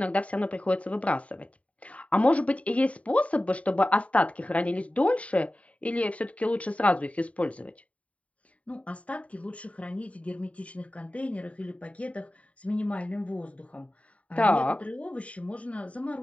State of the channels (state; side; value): late; right; 0.066 ms